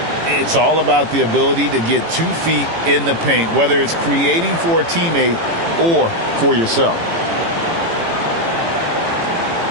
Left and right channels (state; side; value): late; left; 18 ms